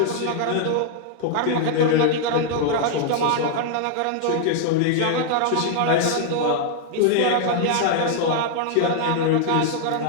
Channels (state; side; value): different; both; correlation -0.01